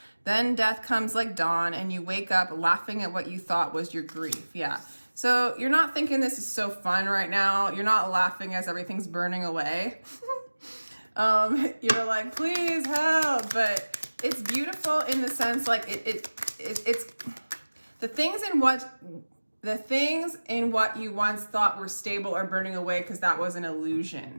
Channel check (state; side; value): inverted; both; correlation -1.00